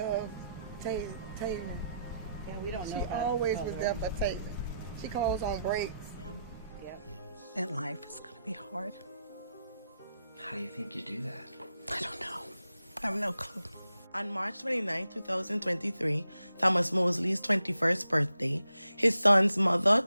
Taylen. Yeah, we don't know. She always was there for Taylen. She calls on breaks. Yeah. And life is going to be hard. How do you think you do that? I don't know. I have no clue. On March 29, 2023, Thomas Mosley's 21st birthday, his son's mother,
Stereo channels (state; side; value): inverted; both; correlation -0.81